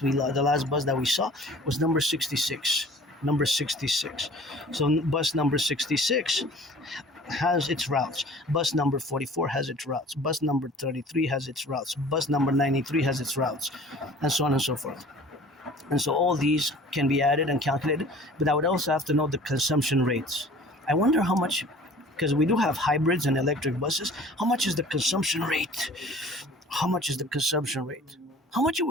last bus that we saw was number 66. Number 66. So bus number 66 has its routes. Bus number 44 has its routes. Bus number 33 has its routes. Bus number 93 has its routes, and so on and so forth. And so all these can be added and calculated, but I would also have to know the consumption rates. I wonder how much, because we do have hybrids and electric buses, how much is the consumption rate? How much is the consumption rate? How much it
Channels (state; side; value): normal; both; correlation 0.47